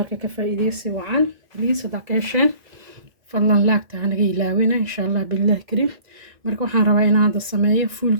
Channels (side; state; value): left; late; 1.9 ms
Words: كفايديسي وعن ليس داكيشن فالله لاك تعنقي لاوينا إن شاء الله بالله كريم ماركة وحان رواينا عند السماية فول